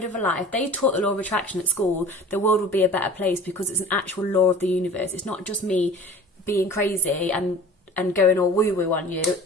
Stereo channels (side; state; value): both; normal; correlation 0.42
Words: of a lie. If they taught the law of attraction at school, the world would be a better place, because it's an actual law of the universe. It's not just me being crazy and going all woo-woo on you.